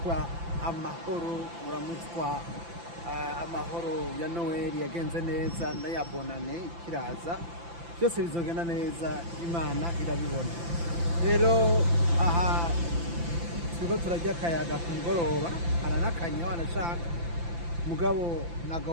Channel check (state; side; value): late; left; 5.9 ms